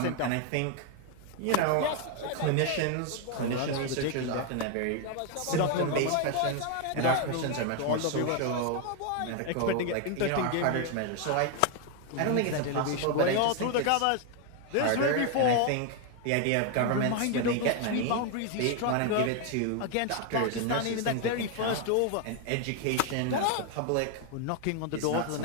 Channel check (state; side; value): different; both; correlation 0.01